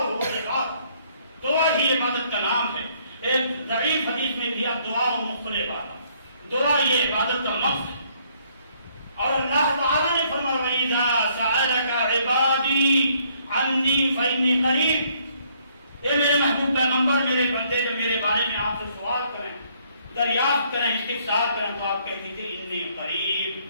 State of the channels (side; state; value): both; inverted; correlation -0.66